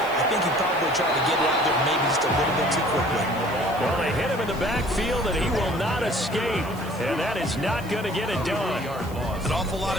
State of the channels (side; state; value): right; noise; hiss, 20 dB below the sound